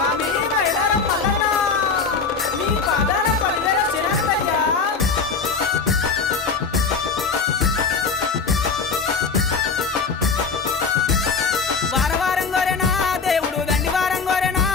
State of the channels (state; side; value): quieter; right; 5.0 dB